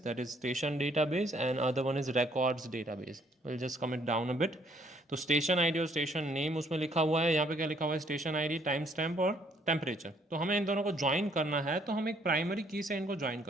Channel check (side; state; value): both; normal; correlation 0.65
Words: that is station database and other one is records database. Will just calm it down a bit. तो स्टेशन आईडी और स्टेशन नेम उसमें लिखा हुआ है। यहाँ पे क्या लिखा हुआ है? स्टेशन आईडी, टाइम स्टैम्प और टेम्परेचर। तो हमें इन दोनों को ज्वाइन करना है, तो हम एक प्राइमरी की से इनको ज्वाइन